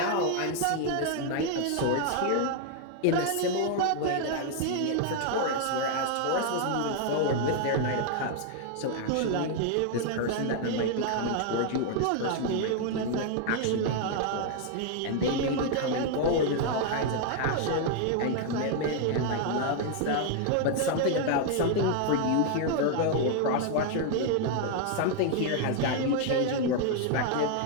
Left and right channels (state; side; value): different; both; correlation 0.00